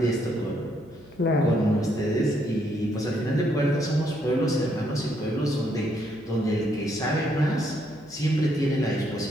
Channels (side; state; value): right; noise; hum, 26 dB below the sound